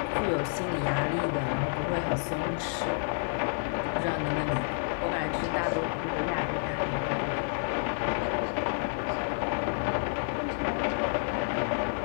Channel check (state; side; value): silent; right; digital silence